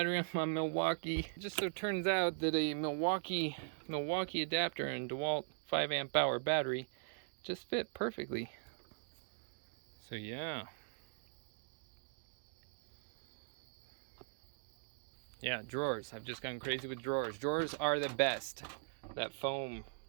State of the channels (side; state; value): left; silent; digital silence